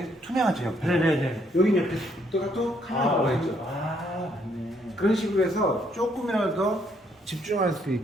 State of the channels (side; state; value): both; normal; correlation 0.70